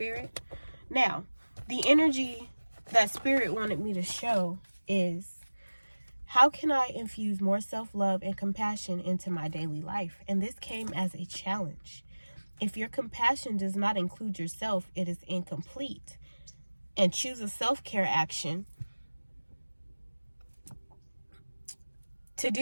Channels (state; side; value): inverted; both; correlation -1.00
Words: Now, the energy that Spirit wanted me to show is, how can I infuse more self-love and compassion into my daily life? And this came as a challenge. If your compassion does not include yourself, it is incomplete. And choose a self-care action to